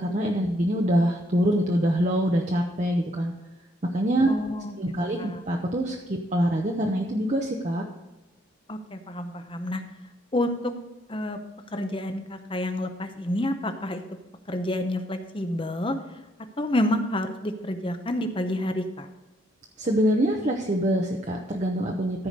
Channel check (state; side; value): normal; both; correlation 0.71